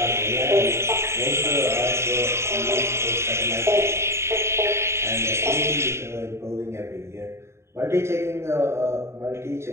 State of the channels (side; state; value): left; late; 0.13 ms